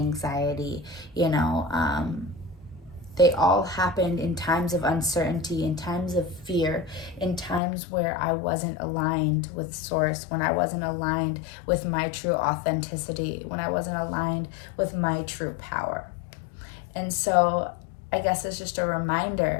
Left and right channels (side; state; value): right; drops out; at 7.6 s